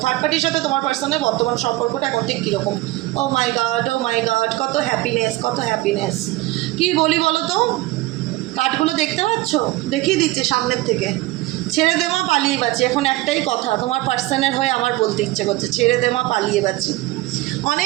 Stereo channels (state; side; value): quieter; left; 18.6 dB